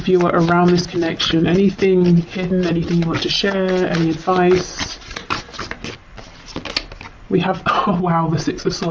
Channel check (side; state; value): both; identical; correlation 1.00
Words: around this connection? Anything hidden, anything you want to share, any advice? We have, oh wow, the Six of